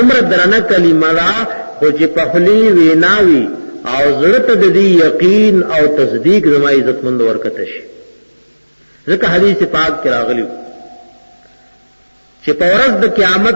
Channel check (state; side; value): inverted; both; correlation -1.00